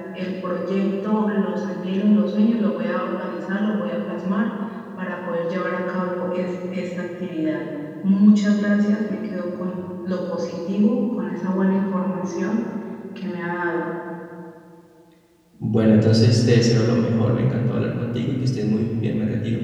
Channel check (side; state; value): both; identical; correlation 1.00